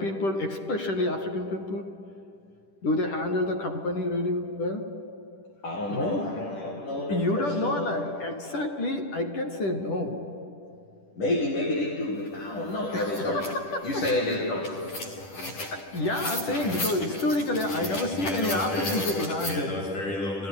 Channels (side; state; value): right; late; 10 ms